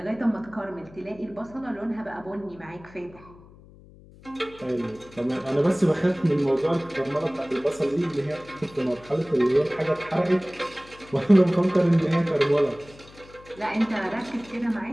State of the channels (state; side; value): noise; left; hum, 22 dB below the sound